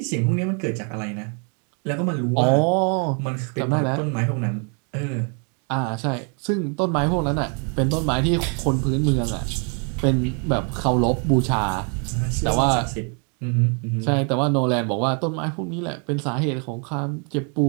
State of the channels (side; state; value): left; quieter; 38.3 dB